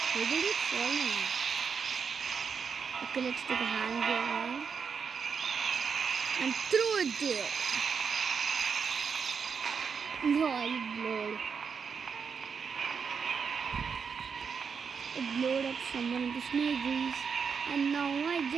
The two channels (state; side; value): quieter; left; 6.1 dB